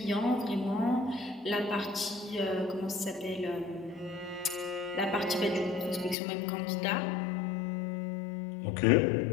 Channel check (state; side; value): drops out; right; at 6.2 s